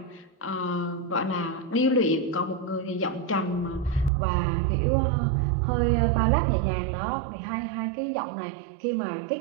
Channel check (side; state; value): left; drops out; at 4.1 s